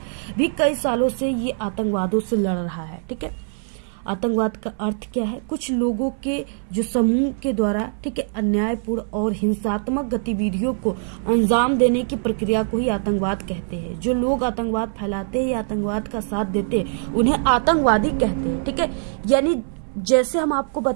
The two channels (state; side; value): silent; left; 64 dB below the other